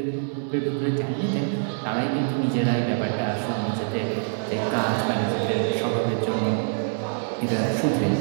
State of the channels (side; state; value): left; silent; 55 dB below the other